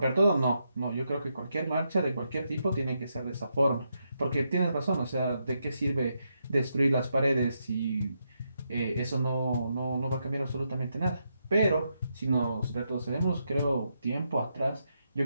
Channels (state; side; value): inverted; both; correlation -0.82